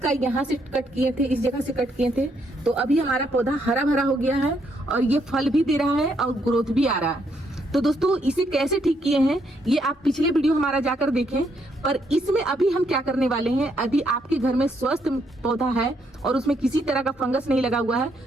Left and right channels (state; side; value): normal; both; correlation 0.74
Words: यहाँ से कट किए थे, इस जगह से कट किए थे, तो अभी हमारा पौधा हरा भरा हो गया है और ये फल भी दे रहा है और ग्रोथ भी आ रहा है। तो दोस्तों इसे कैसे ठीक किए हैं ये आप पिछले वीडियो हमारा जाकर देखें। पर इसमें अभी हम क्या करने वाले हैं, यदि आपके घर में स्वस्थ पौधा है और उसमें किसी तरह का फंगस नहीं लगा हुआ